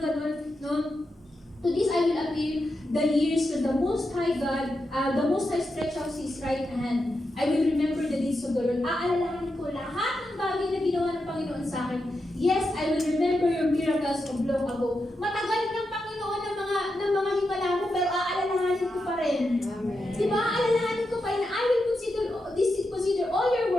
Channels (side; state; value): both; normal; correlation 0.87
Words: gano'n, no? To this I will appeal the years when the Most High God, the Most High stretch out His right hand. I will remember the deeds of the Lord. Aalalahanin ko lahat ng bagay na ginawa ng Panginoon sa akin. Yes, I will remember your miracles of long ago. Matagal ng Panginoon ng mga himala mo, pero aalalahanin ko pa rin. Diba? Aalalahanin ko pa rin. I will consider all your